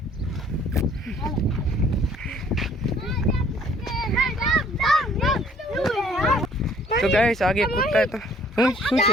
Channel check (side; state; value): both; normal; correlation 0.59